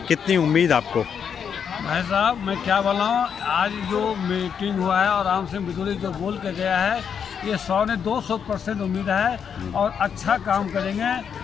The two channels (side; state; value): right; quieter; 7.4 dB